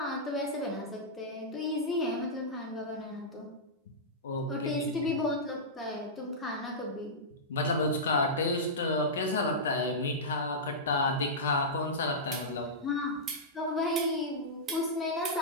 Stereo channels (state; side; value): normal; both; correlation -0.13